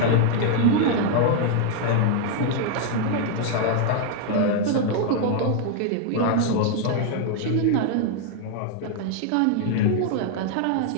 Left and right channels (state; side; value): different; both; correlation 0.00